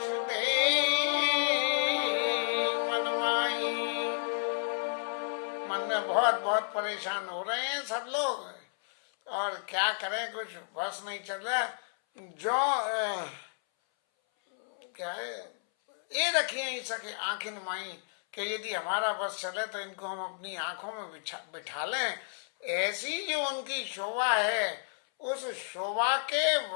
दे मनमाई। मन में बहुत परेशान हो रहे हैं सब लोग और क्या करें, कुछ बस नहीं चल रहा। जो क्या है, ये रखिए ही सके आंखें माई कि यदि हमारा बस चले तो इनको हम अपनी आंखों में बिठा लें। ऐसी जो उनकी शोभा है, उस शोभा के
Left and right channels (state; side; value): silent; right; 57 dB below the other